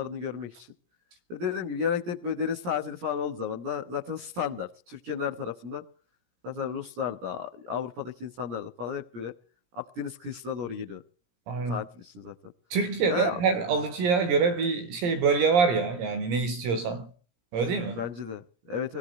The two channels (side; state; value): left; late; 17 ms